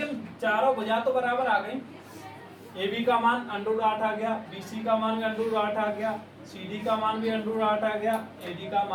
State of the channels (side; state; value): both; identical; correlation 1.00